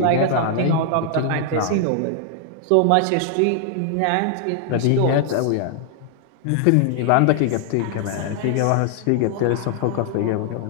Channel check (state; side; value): different; both; correlation 0.00